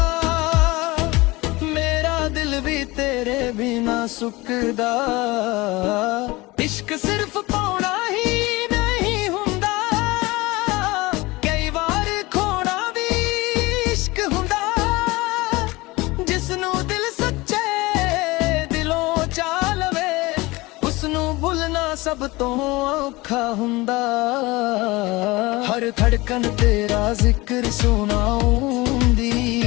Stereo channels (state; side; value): quieter; right; 21.9 dB